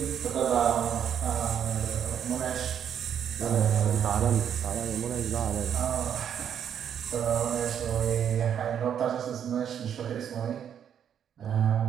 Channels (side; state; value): left; quieter; 8.8 dB